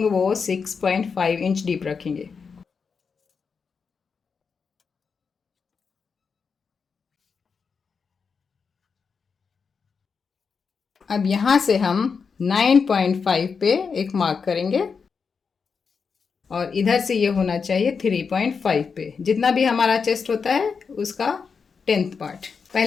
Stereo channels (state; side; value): quieter; right; 5.6 dB